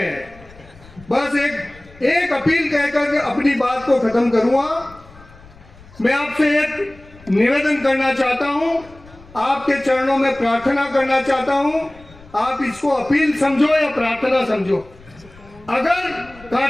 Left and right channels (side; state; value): left; noise; rumble, 23 dB below the sound